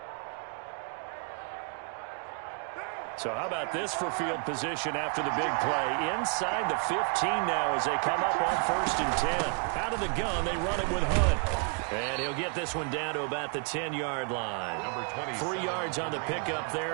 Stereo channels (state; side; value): quieter; left; 39.7 dB